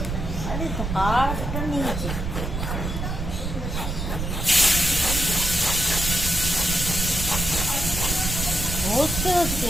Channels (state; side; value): noise; right; rumble, 4 dB below the sound